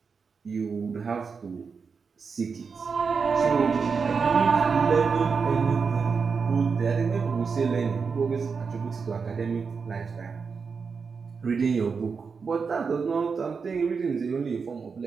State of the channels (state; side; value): quieter; left; 5.4 dB